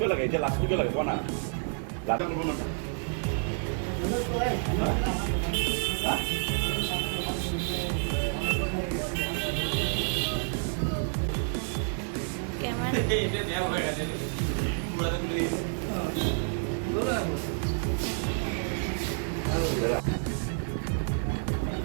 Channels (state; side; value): silent; left; 58 dB below the other